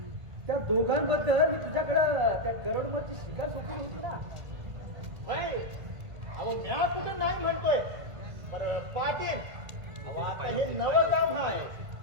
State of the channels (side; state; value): left; late; 1.9 ms